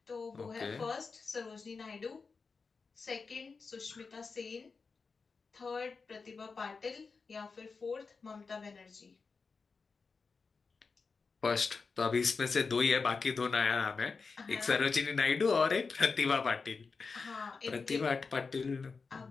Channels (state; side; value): quieter; right; 4.7 dB